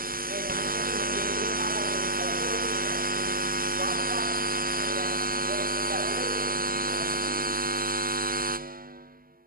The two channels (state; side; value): late; left; 0.42 ms